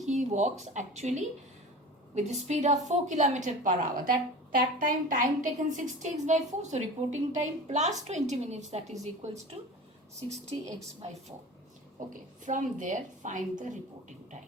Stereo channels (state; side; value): normal; both; correlation 0.35